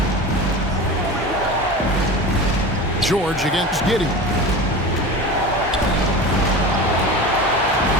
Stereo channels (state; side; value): normal; both; correlation 0.30